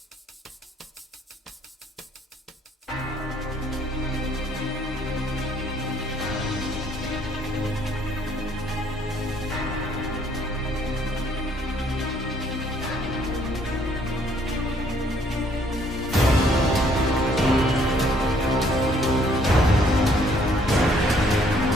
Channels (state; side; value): normal; both; correlation 0.64